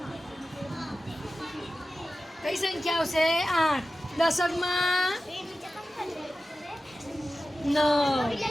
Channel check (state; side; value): normal; both; correlation 0.95